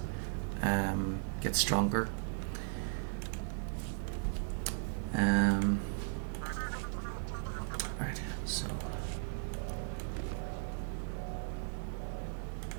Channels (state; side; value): silent; left; 53 dB below the other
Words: gets stronger. Right. So